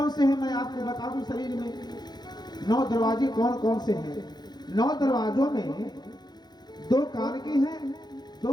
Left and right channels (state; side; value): late; right; 0.20 ms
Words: से हैं मैं आपको बता दूं। शरीर में 9 दरवाजे कौन कौन से हैं। 9 दरवाजों में 2 कान के हैं,